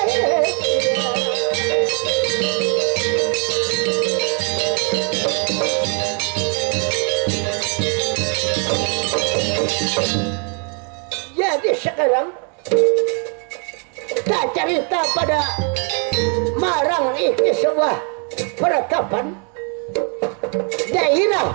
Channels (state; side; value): quieter; left; 39.5 dB